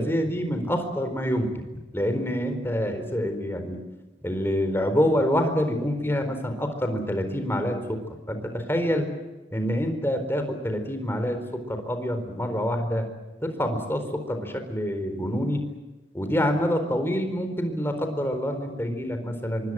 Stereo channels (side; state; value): both; normal; correlation 0.79